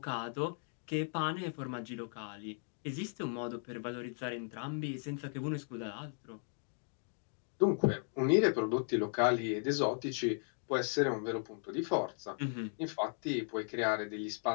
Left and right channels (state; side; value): silent; right; 53 dB below the other